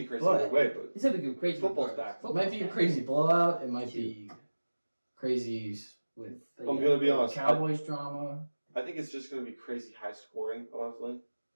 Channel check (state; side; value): inverted; both; correlation -1.00